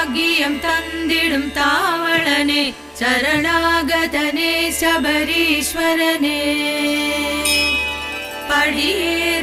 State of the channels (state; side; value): identical; both; correlation 1.00